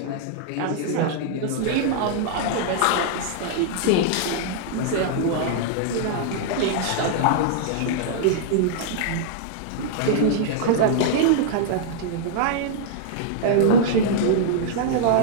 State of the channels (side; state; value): both; different; correlation -0.01